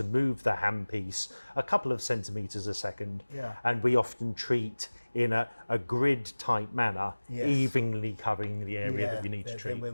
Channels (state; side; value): inverted; both; correlation -1.00